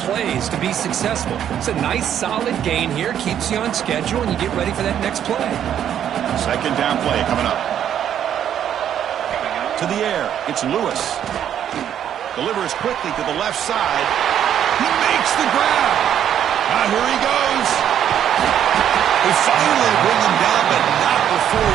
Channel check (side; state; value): left; quieter; 9.8 dB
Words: plays to be successful. It's a nice, solid gain here, keeps you on schedule, and you get ready for that next play. Second down play coming up. To the air, it's Lewis. Delivers quickly to the left side. He makes the grab. Now here he goes. They finally bring him down, but not before